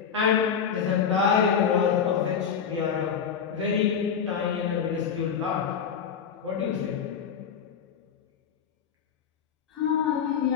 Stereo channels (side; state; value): right; quieter; 7.3 dB